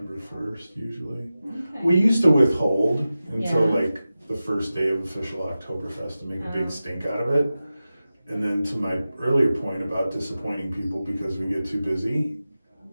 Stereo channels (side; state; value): both; inverted; correlation -0.94